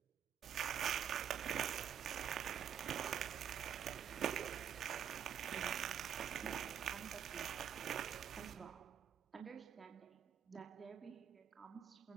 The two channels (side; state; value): left; quieter; 8.8 dB